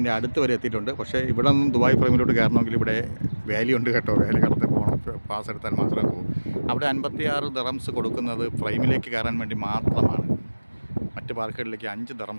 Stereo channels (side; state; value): both; inverted; correlation -1.00